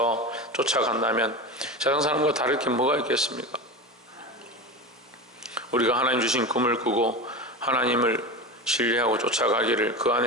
쫓아간다면 세상 사람과 다를 게 뭐가 있겠습니까? 우리가 하나님 주신 꿈을 꾸고 하나님을 신뢰하고 쫓아가기를, 그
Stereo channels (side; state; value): both; normal; correlation 0.25